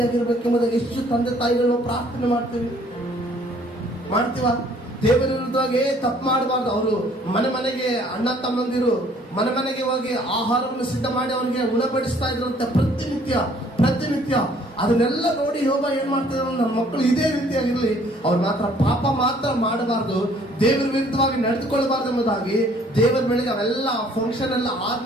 ಎಷ್ಟು ತಂದೆ ತಾಯಿಗಳು ಪ್ರಾರ್ಥನೆ ಮಾಡ್ತೀವ. ದೇವರ ವಿರುದ್ಧವಾಗಿ ತಪ್ಪು ಮಾಡಬಾರ್ದು. ಅವರು ಮನೆಗೆ ಅಣ್ಣ ತಮ್ಮಂದಿರು ಮನೆಗೆ ಹೋಗಿ ಆಹಾರವನ್ನು ಸಿದ್ಧ ಮಾಡಿ ಅವನಿಗೆ ಉಣಬಡಿಸ್ತಾ ಇದ್ರಂತೆ ಪ್ರತಿನಿತ್ಯ. ಅದನ್ನೆಲ್ಲ ನೋಡಿ ಯೋಬ ಏನ್ ಮಾಡ್ತಿದ್ರು? ನನ್ನ ಮಕ್ಕಳು ಇದೇ ರೀತಿಯಾಗಿರ್ಲಿ, ಅವ್ರು ಮಾತ್ರ ಪಾಪ ಮಾತ್ರ ಮಾಡಬಾರ್ದು, ದೇವರ ವಿರುದ್ಧವಾಗಿ ನಡೆದುಕೊಳ್ಳಬಾರ್ದು ಎಂಬುದಾಗಿ ದೇವರ ಬೆಳಿಗ್ಗೆ ಅವೆಲ್ಲ ಫಂಕ್ಷನ್ ಎಲ್ಲ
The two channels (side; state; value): both; normal; correlation 0.59